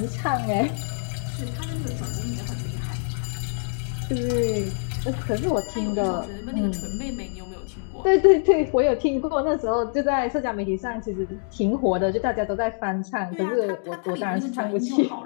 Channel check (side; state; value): right; silent; digital silence